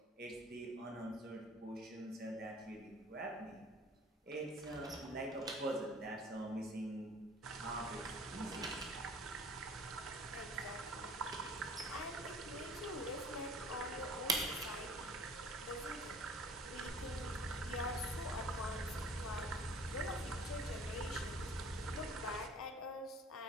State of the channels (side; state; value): both; normal; correlation 0.48